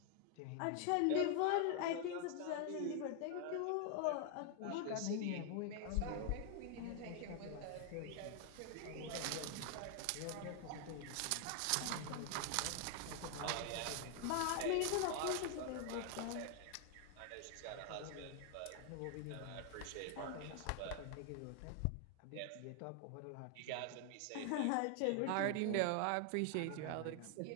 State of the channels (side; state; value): both; different; correlation 0.00